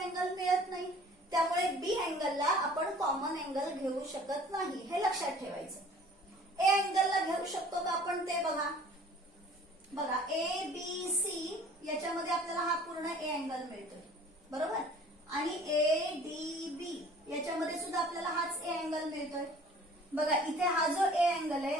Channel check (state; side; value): normal; both; correlation 0.50